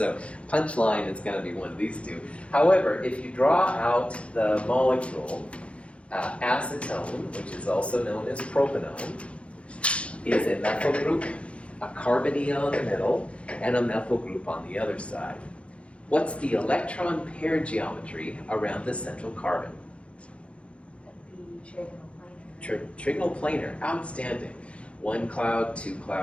punchline is going to be one of these 2. However, if you draw out the molecule, acetone, which is also known as propanone, is a methyl group, a carbonyl in the middle, and a methyl group on the other side. What's the electron pair geometry around the central carbon? That'd be trigonal planar. Trigonal planar, outstanding. 1 cloud, 2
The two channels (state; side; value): late; right; 0.061 ms